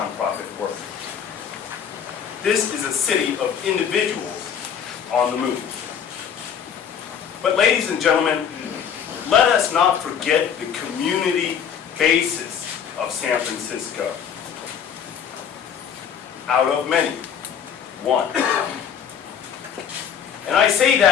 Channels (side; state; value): right; quieter; 8.0 dB